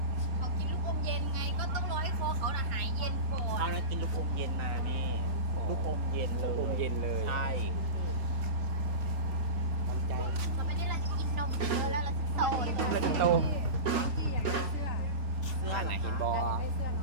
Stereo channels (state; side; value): late; left; 3.8 ms